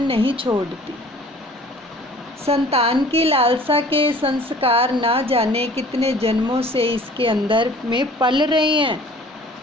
नहीं छोड़ती। संतान की लालसा के संस्कार ना जाने कितने जन्मों से इसके अंदर में पल रहे हैं।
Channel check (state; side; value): normal; both; correlation 0.50